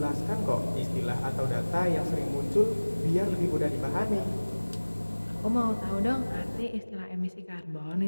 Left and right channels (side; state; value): both; inverted; correlation -1.00